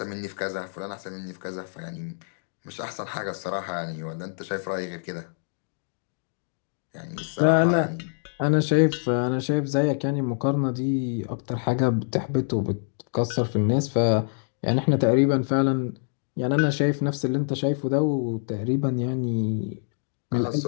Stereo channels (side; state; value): right; silent; digital silence